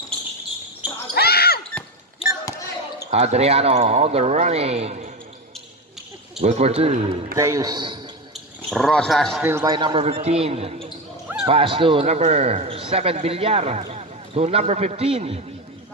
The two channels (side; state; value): both; normal; correlation 0.17